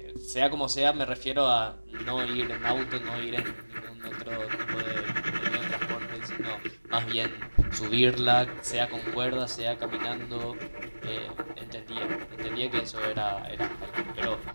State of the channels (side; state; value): both; inverted; correlation -1.00